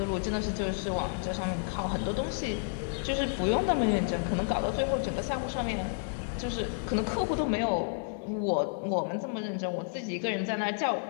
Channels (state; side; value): silent; right; digital silence